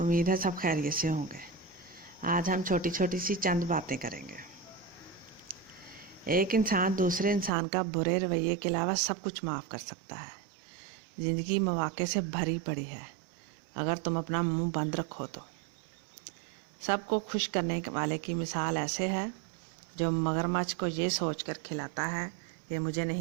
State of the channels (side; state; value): left; drops out; at 7.5 s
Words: है सब खैरियत से होंगे। आज हम छोटी छोटी सी चंद बातें करेंगे। एक इंसान दूसरे इंसान का बुरे रवैये के अलावा सब कुछ माफ़ कर सकता है। ज़िंदगी मौक़े से भरी पड़ी है, अगर तुम अपना मुंह बंद रखो तो। सबको खुश करने वाले की मिसाल ऐसे है जो मगरमच्छ को ये सोचकर खिलाता है ये मुझे